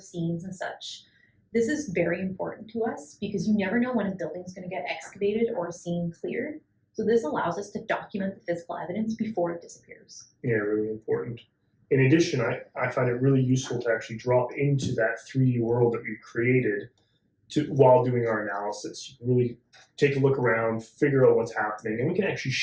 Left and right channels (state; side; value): identical; both; correlation 1.00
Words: scenes and such. This is very important to us because you never know when a building is going to get excavated or a scene cleared. So this allows us to document the physical evidence before it disappears. Yeah, really important. In addition, I find it really useful to actually drop into that 3D world that we've created while doing our analysis. You can really take a look around, figure out what's happening, and we can actually